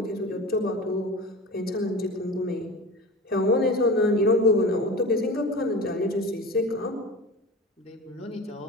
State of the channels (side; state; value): both; normal; correlation 0.32